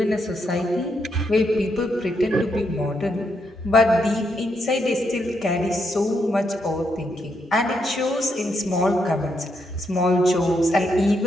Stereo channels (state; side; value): normal; both; correlation 0.79